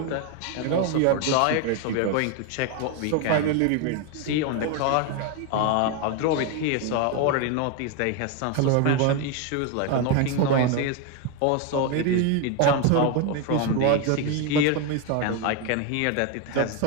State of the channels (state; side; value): different; both; correlation 0.02